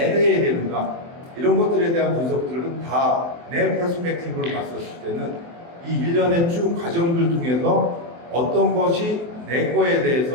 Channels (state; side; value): late; left; 24 ms